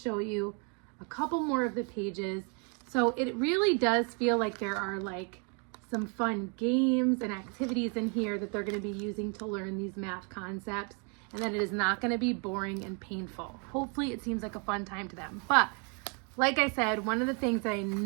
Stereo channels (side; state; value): left; quieter; 36.5 dB